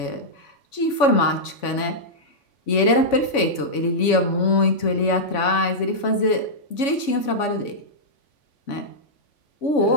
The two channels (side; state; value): right; late; 3.5 ms